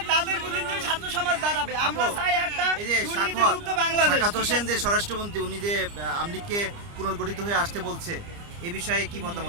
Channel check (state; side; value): late; left; 29 ms